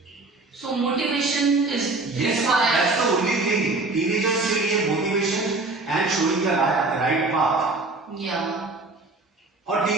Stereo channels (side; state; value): left; quieter; 3.3 dB